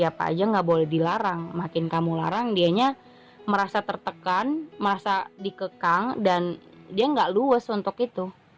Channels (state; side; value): identical; both; correlation 1.00